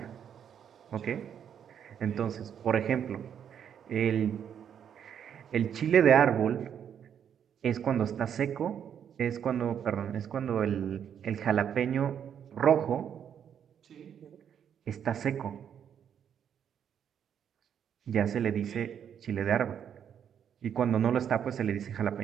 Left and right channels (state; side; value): quieter; left; 8.6 dB